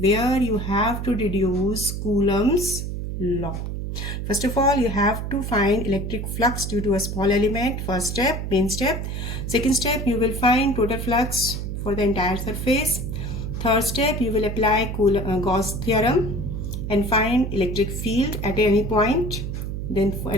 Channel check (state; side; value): noise; right; hum, 4 dB below the sound